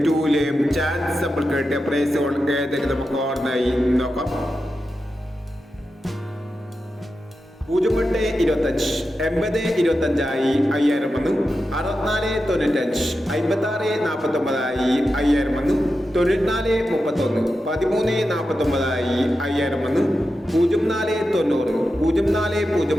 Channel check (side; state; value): both; normal; correlation 0.90